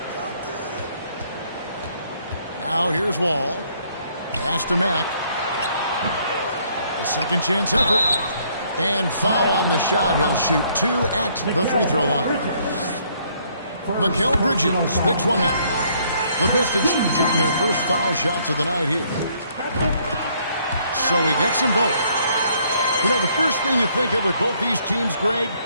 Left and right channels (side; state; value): both; inverted; correlation -0.66